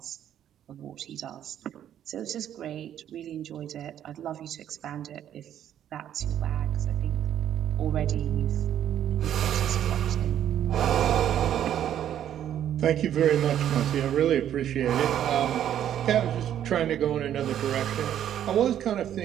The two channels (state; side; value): quieter; left; 10.5 dB